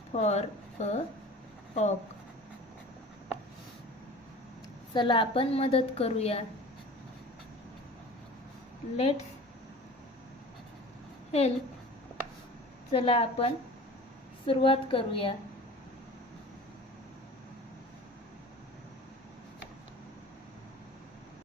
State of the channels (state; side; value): normal; both; correlation 0.40